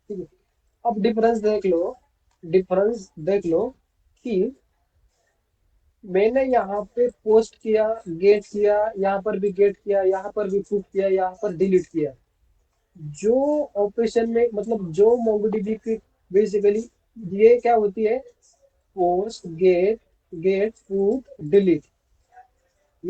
ठीक है, अब डिफरेंस देख लो, डिफरेंस देख लो कि मैंने यहाँ पे पोस्ट किया, गेट किया, यहाँ पर भी गेट किया, यहाँ पर भी पुट किया, यहाँ पर डिलीट किया। जो ऑपरेशन में मतलब जो मोंगोडीबी की बेसिकली ये क्या होती है, post gate get put delete.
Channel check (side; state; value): both; identical; correlation 1.00